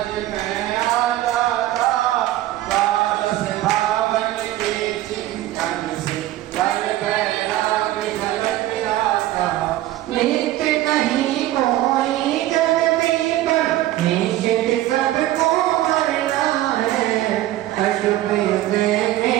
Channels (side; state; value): left; quieter; 14.9 dB